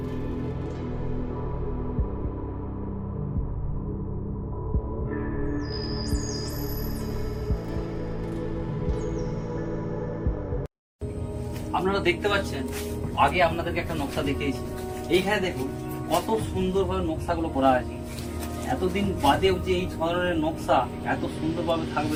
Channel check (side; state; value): both; identical; correlation 1.00